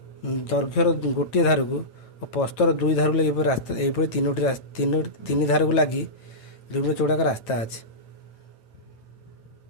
ଗୋଟିଏ ଧାରକୁ ଓ ପ୍ରସ୍ଥର 2 ଧାରକୁ ଲାଗି ଏହିପରି 3 ଧାରକୁ ଲାଗି 2 ମିଟର ଚଉଡ଼ା ଏକ ରାସ୍ତା ଅଛି।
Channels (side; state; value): right; late; 9.1 ms